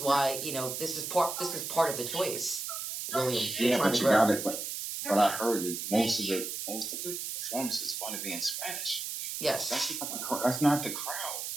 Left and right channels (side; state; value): right; noise; hiss, 5 dB below the sound